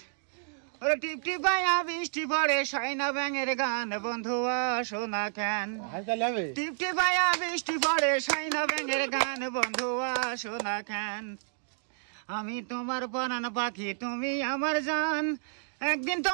ওরে টিপ টিপাইয়া বৃষ্টি পড়ে, সাইনা ব্যাঙের গান। বন্ধু আসো না কেন, টিপ টিপাইয়া বৃষ্টি পড়ে, সাইনা ব্যাঙের গান। বন্ধু আসো না কেন, আমি তোমার পরাণ পাখি, তুমি আমার জান, একদিন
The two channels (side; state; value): left; silent; digital silence